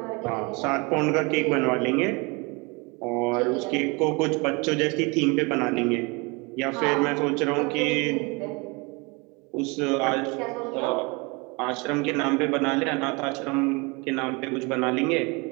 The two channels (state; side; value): quieter; left; 28.3 dB